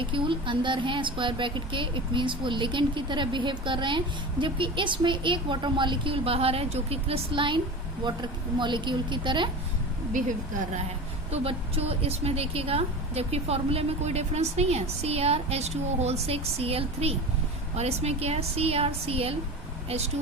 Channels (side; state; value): both; normal; correlation 0.30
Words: अंदर हैं स्क्वायर ब्रैकेट के, इट मीन्स वो लिगेंड की तरह बिहेव कर रहे हैं, जबकि इसमें एक वाटर मॉलिक्यूल बाहर है जो कि क्रिस्टलाइन वाटर मॉलिक्यूल की तरह बिहेव कर रहा है। तो बच्चों इसमें देखिएगा, जबकि फॉर्मूले में कोई डिफरेंस नहीं है, CrH2O6 Cl3, और इसमें क्या है, CrCl